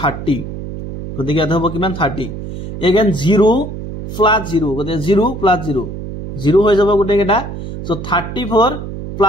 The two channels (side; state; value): right; noise; hum, 8 dB below the sound